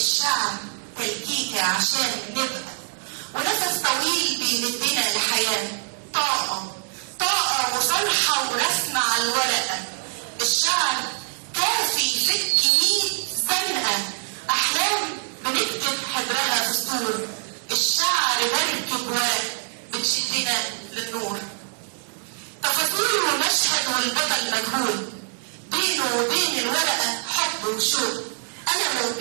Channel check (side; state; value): left; silent; 61 dB below the other